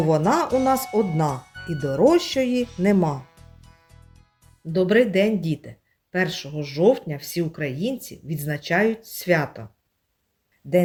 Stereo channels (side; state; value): both; identical; correlation 1.00